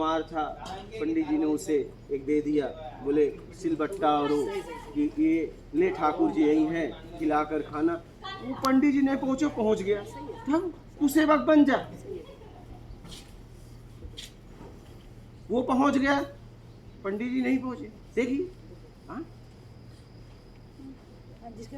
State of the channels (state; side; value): identical; both; correlation 1.00